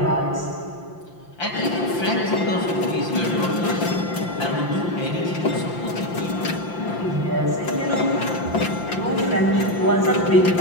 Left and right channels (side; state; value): right; late; 5.8 ms